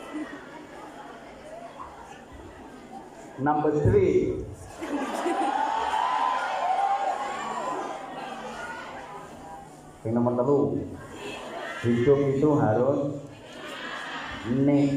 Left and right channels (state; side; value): identical; both; correlation 1.00